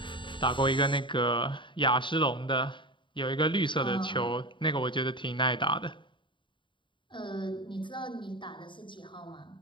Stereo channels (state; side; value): late; right; 0.23 ms